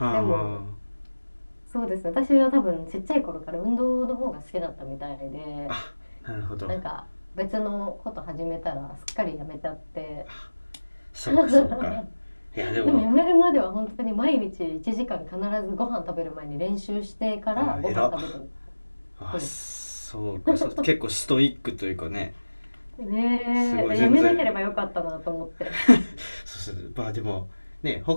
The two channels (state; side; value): inverted; both; correlation -1.00